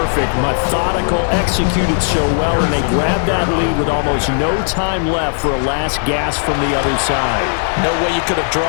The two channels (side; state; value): right; silent; digital silence